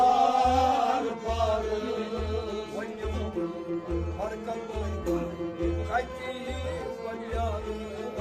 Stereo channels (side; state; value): both; identical; correlation 1.00